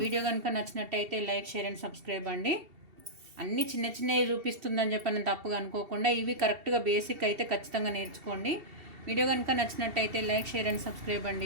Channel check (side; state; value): left; late; 2.7 ms